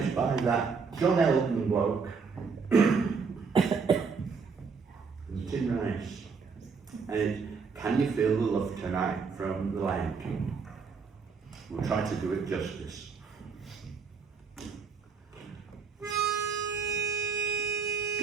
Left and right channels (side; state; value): left; quieter; 5.4 dB